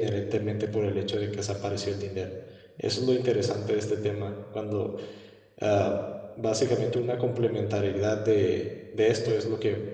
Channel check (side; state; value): both; identical; correlation 1.00